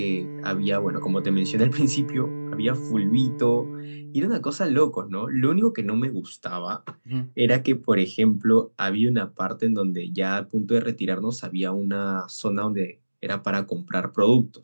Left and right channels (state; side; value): inverted; both; correlation -1.00